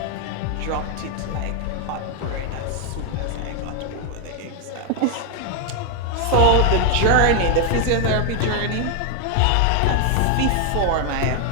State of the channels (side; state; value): both; different; correlation 0.00